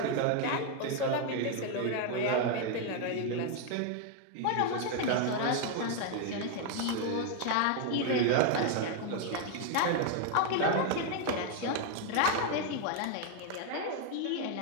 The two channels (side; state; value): both; different; correlation 0.01